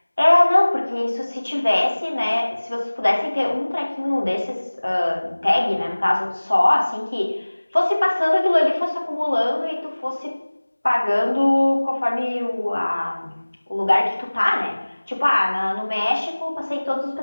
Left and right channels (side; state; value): both; inverted; correlation -1.00